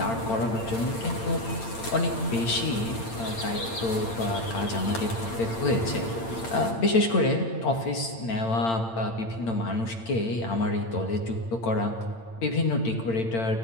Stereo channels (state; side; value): late; right; 8.8 ms